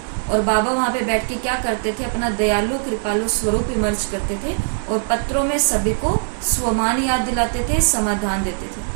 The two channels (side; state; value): left; silent; 65 dB below the other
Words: और बाबा वहाँ पे बैठ के क्या करते थे? अपना दयालु कृपालु स्वरूप इमर्ज करते थे, और पत्रों में सभी को स्वमान याद दिलाते थे, समाधान देते थे।